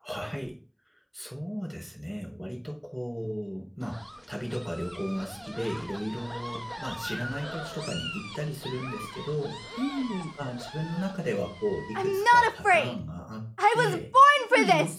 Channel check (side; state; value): both; identical; correlation 1.00